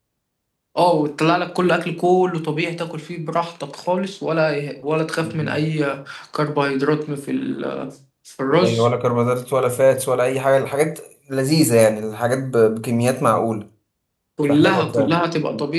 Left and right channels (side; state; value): both; identical; correlation 1.00